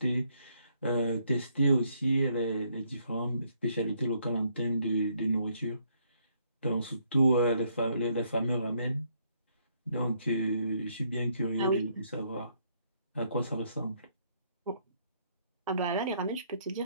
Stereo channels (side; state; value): both; inverted; correlation -0.71